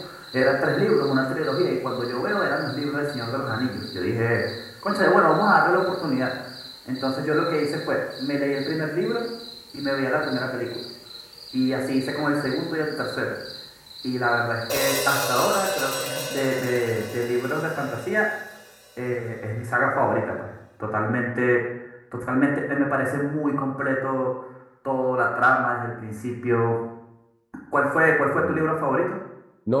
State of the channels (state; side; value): identical; both; correlation 1.00